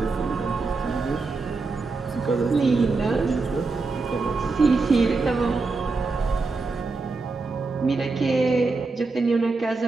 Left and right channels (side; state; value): left; quieter; 3.9 dB